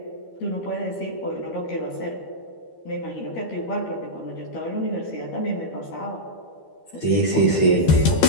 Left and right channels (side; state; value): right; late; 12 ms